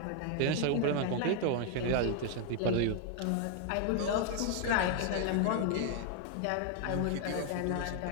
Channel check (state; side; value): different; both; correlation 0.00